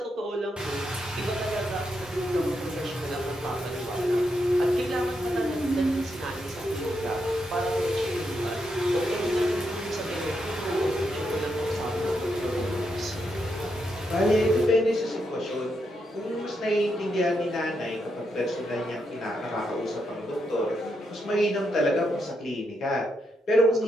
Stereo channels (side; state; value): both; normal; correlation 0.82